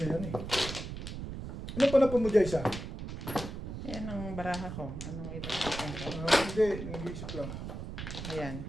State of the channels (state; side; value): noise; right; rumble, 7 dB below the sound